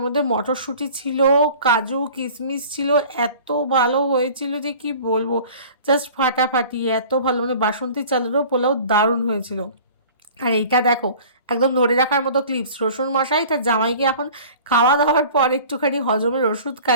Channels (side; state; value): both; inverted; correlation -0.45